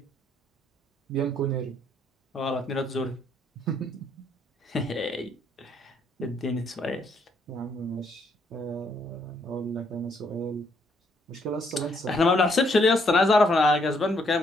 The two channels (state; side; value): normal; both; correlation 0.70